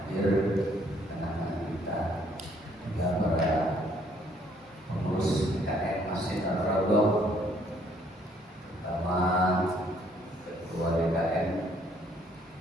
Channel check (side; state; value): both; normal; correlation 0.65